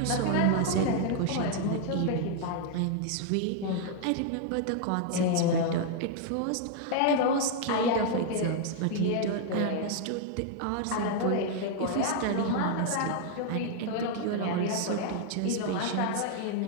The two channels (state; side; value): different; both; correlation 0.00